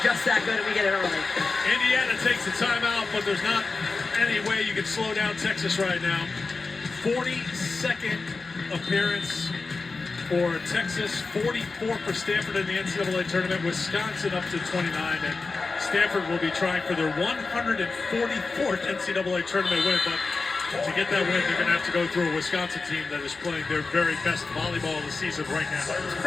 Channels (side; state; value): right; quieter; 4.0 dB